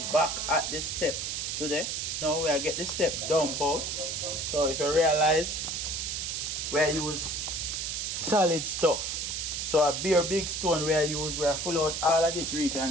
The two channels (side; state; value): right; noise; hiss, 2 dB below the sound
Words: back at the step today. Now we are get the step dump out. So if you realize, we use solid stuff. So a bare big stone we use, we are full out all of this